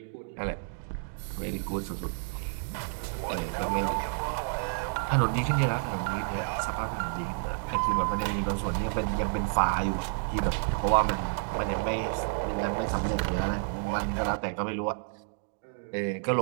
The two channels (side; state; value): left; silent; 58 dB below the other